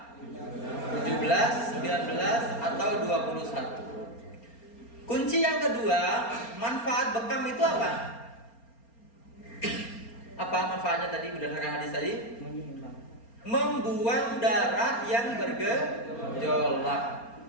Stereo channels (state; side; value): late; right; 4.3 ms